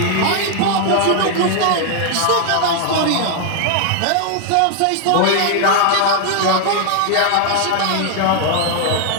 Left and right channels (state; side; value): different; both; correlation 0.00